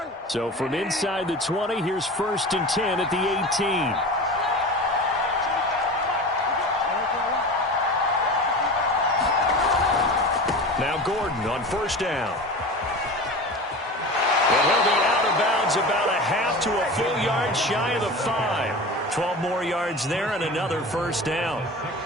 So from inside the 20, here's 1st and 10 at the 18. Now Gordon on 1st down. And he'll be out of bounds about a half to a full yard shy of the 5. 12 more yards there and another first down.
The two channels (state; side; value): normal; both; correlation 0.32